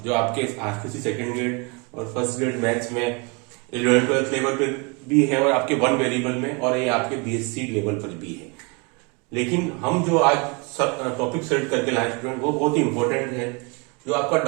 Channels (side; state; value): left; quieter; 30.4 dB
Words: जो आपके आरसीसी सेकेंड ग्रेड और फर्स्ट ग्रेड मैथ्स में 11th-12th लेवल पर भी है और आपके वन वेरिएबल में, और ये आपके बीएससी लेवल पर भी है। लेकिन हम जो आज टॉपिक सेलेक्ट करके लाए स्टूडेंट, वो बहुत ही इंपॉर्टेंट है, जो आपका